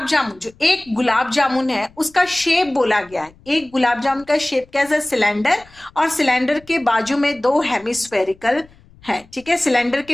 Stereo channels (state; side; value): noise; left; rumble, 27 dB below the sound